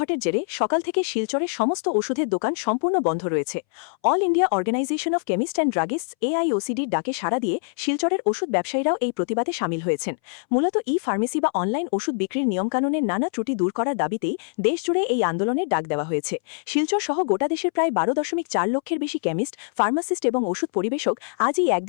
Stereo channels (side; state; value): right; silent; 63 dB below the other